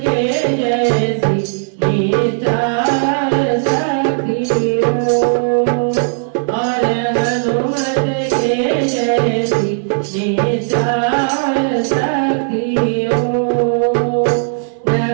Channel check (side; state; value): left; silent; 69 dB below the other